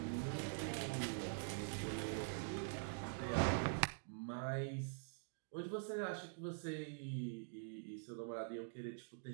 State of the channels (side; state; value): left; silent; digital silence